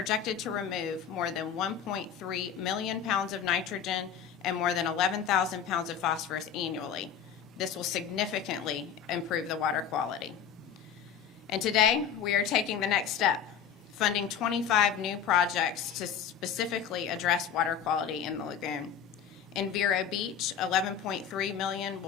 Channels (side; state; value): right; quieter; 8.0 dB